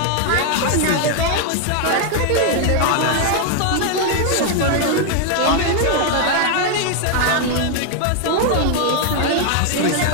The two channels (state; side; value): different; both; correlation 0.00